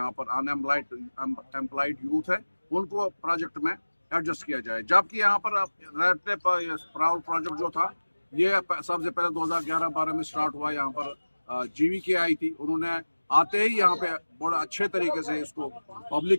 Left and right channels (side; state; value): both; inverted; correlation -1.00